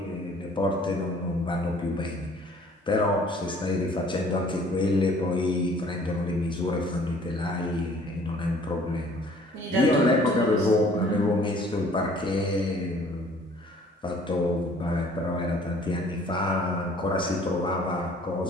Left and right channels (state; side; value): normal; both; correlation 0.55